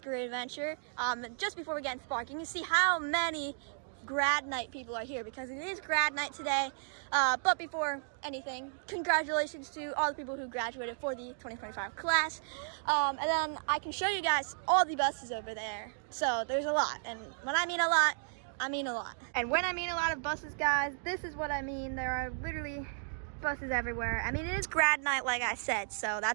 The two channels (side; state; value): left; silent; digital silence